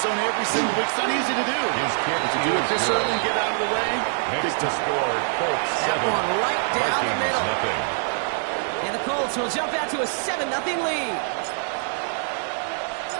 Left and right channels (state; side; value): silent; left; digital silence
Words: zone every single week. It's not easy to do. But to do it this early and get out of the way, big score, Colts 7. That one right down the middle. And the Colts will jump out to a 7-0 lead.